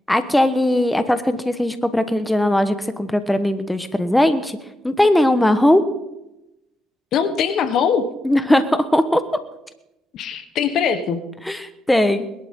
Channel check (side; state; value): both; normal; correlation 0.87